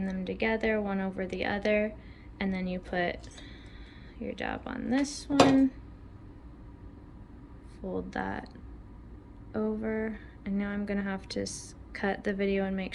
them together one over the other, and then you put your dab on this one, fold that over, and now I'm gonna have to cut the video and make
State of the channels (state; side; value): identical; both; correlation 1.00